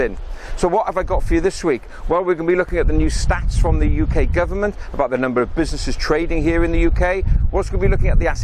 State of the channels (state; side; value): identical; both; correlation 1.00